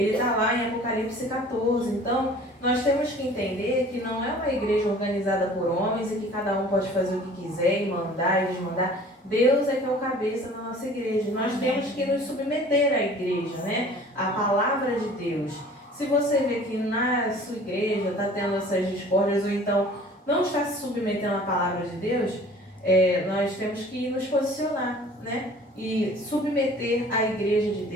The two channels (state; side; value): normal; both; correlation 0.48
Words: está lá em Apocalipse 14. Então, nós temos que entender que não é uma igreja organizada por homens e que cada um pode fazer o que quiser e mandar e desmandar. Deus é que é o cabeça da nossa igreja. Nós temos que nos submeter à igreja, né? À palavra de Deus. Se você vê que na sua igreja está tendo essas discórdias ou então não está se submetendo à palavra de Deus, nós temos que nos posicionar, né? E submeter a igreja de